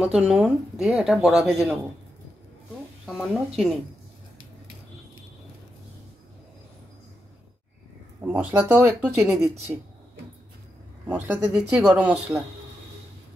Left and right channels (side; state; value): both; normal; correlation 0.86